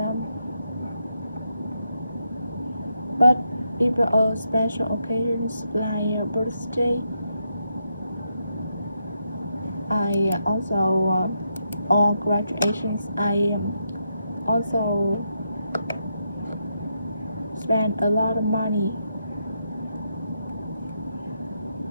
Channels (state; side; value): inverted; both; correlation -0.82